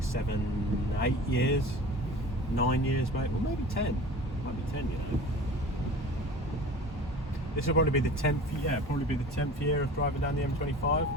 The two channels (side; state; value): both; normal; correlation 0.39